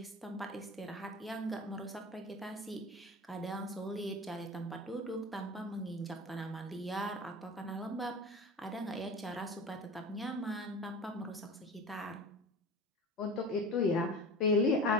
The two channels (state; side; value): normal; both; correlation 0.34